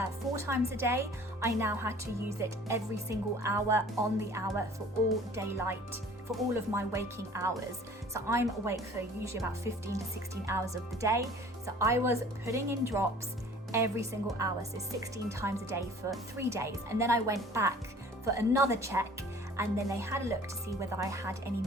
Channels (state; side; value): normal; both; correlation 0.49